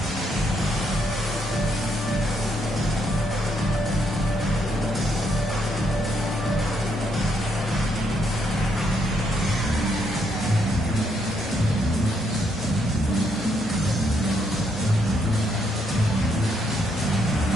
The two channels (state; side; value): normal; both; correlation 0.74